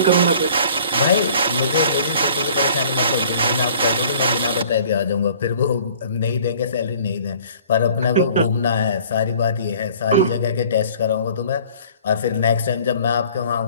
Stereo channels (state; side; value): inverted; both; correlation -0.51